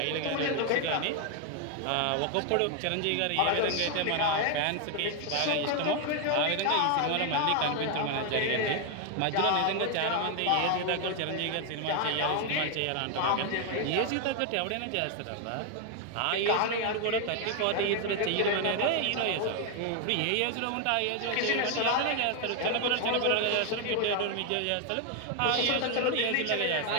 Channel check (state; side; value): different; both; correlation 0.01